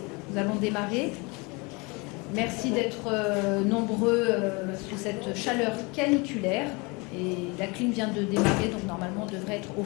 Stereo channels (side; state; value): right; quieter; 27.9 dB